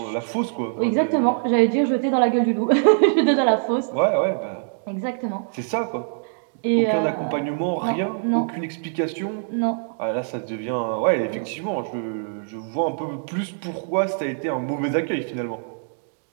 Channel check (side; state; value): left; silent; digital silence